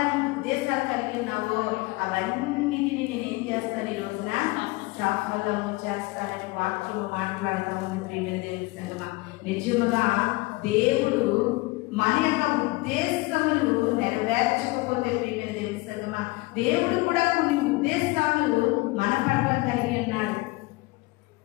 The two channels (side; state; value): right; quieter; 23.0 dB